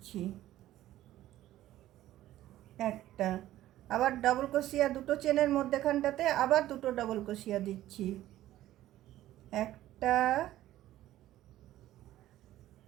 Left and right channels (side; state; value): left; quieter; 14.2 dB